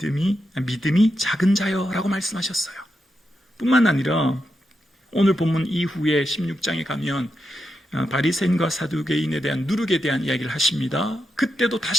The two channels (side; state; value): both; normal; correlation 0.86